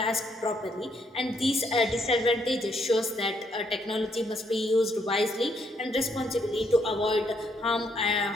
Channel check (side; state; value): both; normal; correlation 0.72